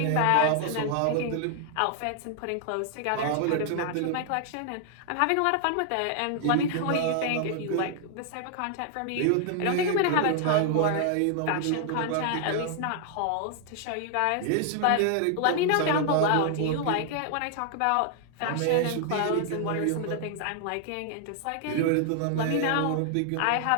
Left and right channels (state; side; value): different; both; correlation 0.00